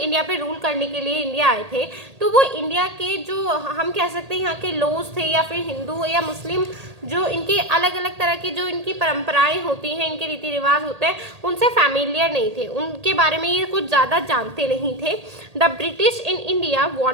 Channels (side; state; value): left; late; 1.8 ms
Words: पे rule करने के लिए India आए थे, तो वो इंडिया के जो हम कह सकते हैं यहाँ के लॉज थे या फिर हिंदू या मुस्लिम जो इनके अलग अलग तरह की जो इनकी परंपराएं होती हैं, इनके रीति रिवाज होते हैं, उनसे फैमिलियर नहीं थे, उनके बारे में ये कुछ ज़्यादा जानते नहीं थे. The British in India